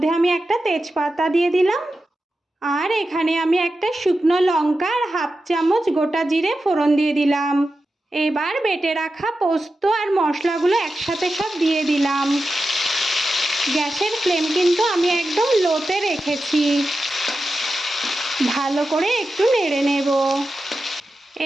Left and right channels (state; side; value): normal; both; correlation 0.91